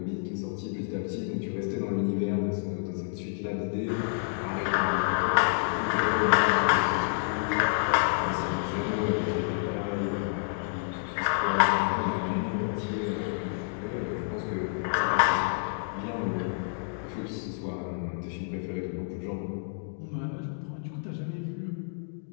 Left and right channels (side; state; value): right; silent; digital silence